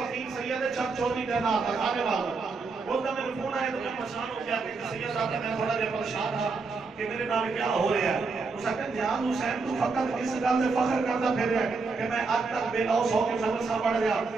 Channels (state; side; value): quieter; left; 4.3 dB